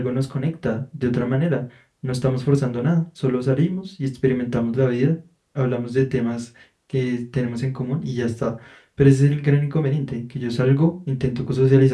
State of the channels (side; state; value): both; identical; correlation 1.00